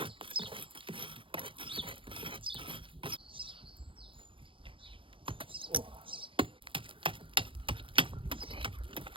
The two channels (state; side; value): late; left; 0.25 ms